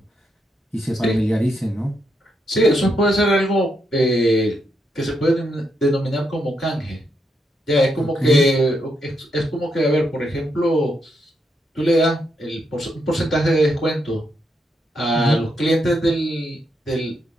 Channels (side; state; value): both; normal; correlation 0.80